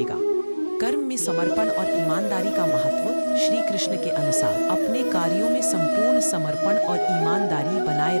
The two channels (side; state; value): both; inverted; correlation -1.00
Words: कर्म में समर्पण और ईमानदारी का महत्व। श्री कृष्ण के अनुसार अपने कार्यों में संपूर्ण समर्पण और ईमानदारी बनाए